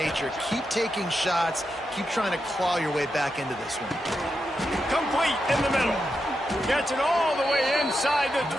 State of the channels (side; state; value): both; normal; correlation 0.86